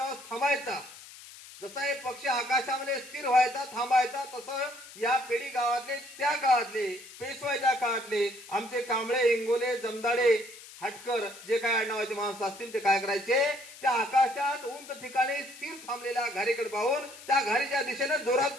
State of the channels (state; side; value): noise; left; hiss, 17 dB below the sound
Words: थांबायचा, जसा एक पक्षी आकाशामध्ये स्थिर व्हायचा, थांबायचा, तसं या पेढी गावातले, त्या काळातले, पेशवाईच्या काळातले आमचे कांबळे, इंगोले, जमदाडे, हटकर जे काय आडनावाचे माणसं असतील ते काय करायचे? त्या आकाशात उंच ठिकाणी स्थिर थांबलेल्या घारीकडे पाहून त्या घारीच्या दिशेने जोरात